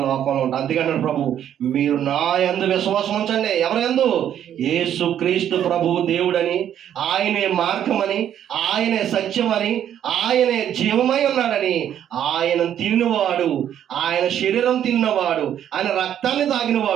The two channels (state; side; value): quieter; left; 10.2 dB